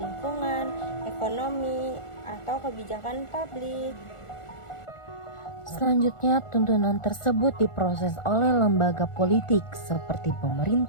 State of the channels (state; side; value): late; right; 1.4 ms